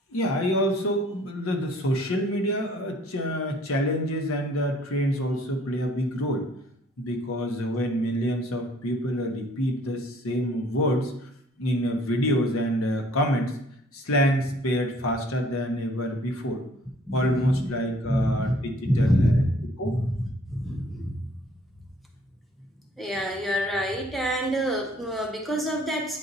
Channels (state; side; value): normal; both; correlation 0.57